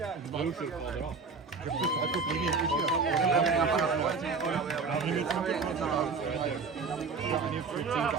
Blue should have called it off.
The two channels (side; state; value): left; quieter; 4.7 dB